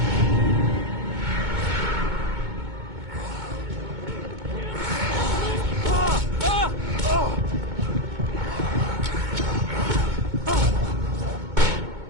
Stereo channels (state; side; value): late; left; 2.2 ms